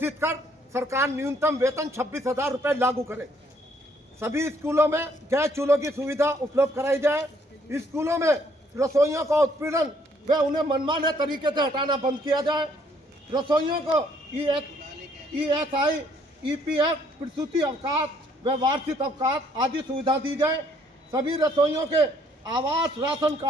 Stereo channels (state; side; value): normal; both; correlation 0.65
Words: कर सरकार न्यूनतम वेतन 26,000 रुपये लागू करे। सभी स्कूलों में गैस चूल्हों की सुविधा उपलब्ध कराई जाए। स्कूलों में रसोइयों का उत्पीड़न व उन्हें मनमाने तरीके से हटाना बंद किया जाए। रसोइयों को ESI, EPF, प्रसूति अवकाश व वार्षिक अवकाश आदि सुविधा दी जाए। सभी रसोइयों के आवास राशन